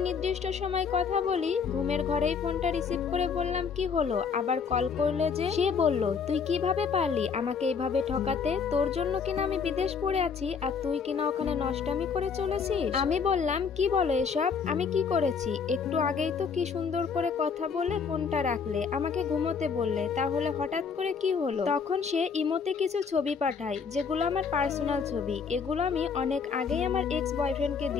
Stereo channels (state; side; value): quieter; right; 5.9 dB